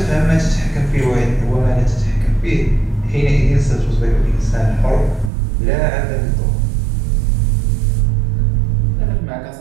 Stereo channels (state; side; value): drops out; left; at 5.3 s